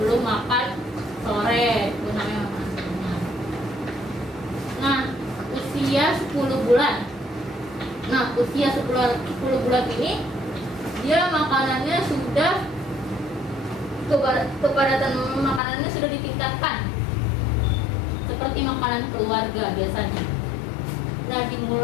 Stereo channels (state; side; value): drops out; right; at 15.6 s